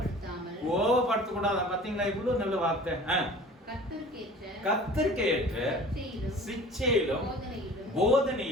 கோபப்படுத்த கூடாது. பாத்தீங்களா, இவ்வளவு நல்ல வார்த்தை. கர்த்தருக்கு ஏற்ற சிட்சையிலும்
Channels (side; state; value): both; normal; correlation 0.44